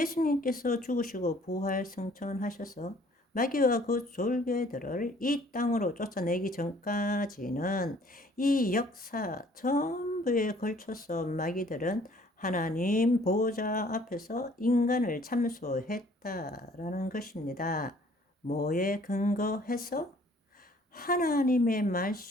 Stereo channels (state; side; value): normal; both; correlation 0.57